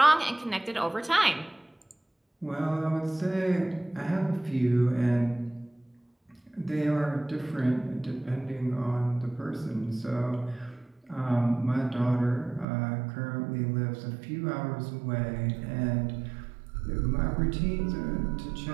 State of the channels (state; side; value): drops out; left; at 12.7 s